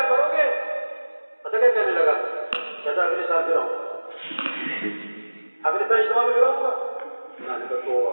پتہ کیا کہنے لگا؟ کہتا اگلے سال پھر آؤں، اگلے سال اجتماع میں پھر آؤں گا. میں نے کہا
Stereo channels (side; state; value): both; inverted; correlation -1.00